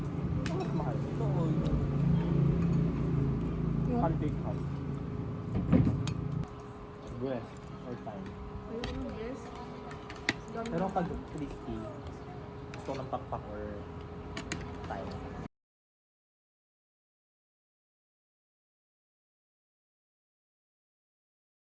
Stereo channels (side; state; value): both; identical; correlation 1.00